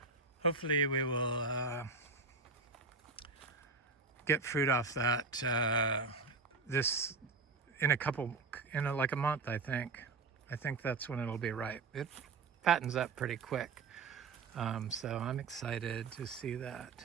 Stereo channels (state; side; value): quieter; left; 4.2 dB